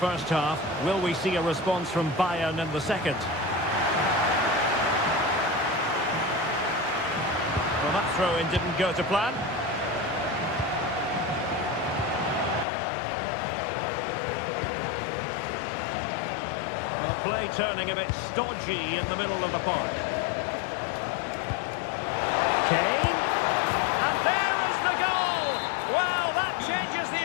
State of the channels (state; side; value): drops out; right; at 12.7 s